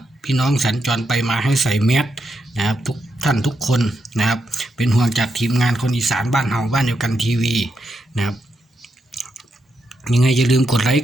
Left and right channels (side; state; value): both; normal; correlation 0.83